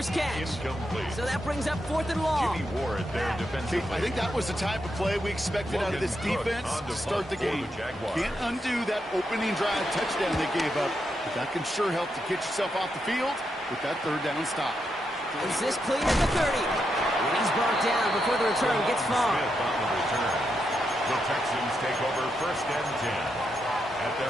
catch. So that brings up 4th and long. I think that was the type of play we expected out of this defense to start the game. Can't undo that opening drive touchdown they gave up, but that can sure help to get yourself off the field with that 3rd down stop. Is this clean at the 30? He's brought down before the return gets far. The Texans take over 1st and 10 at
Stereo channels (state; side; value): normal; both; correlation 0.83